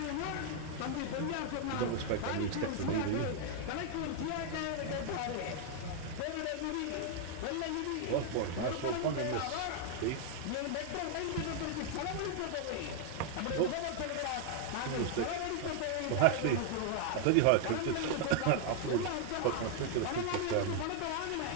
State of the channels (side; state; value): both; different; correlation 0.00